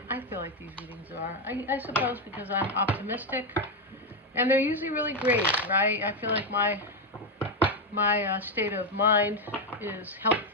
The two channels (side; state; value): both; normal; correlation 0.07